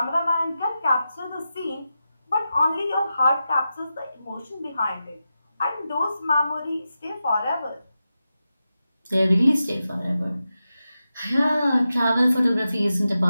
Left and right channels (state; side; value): inverted; both; correlation -0.91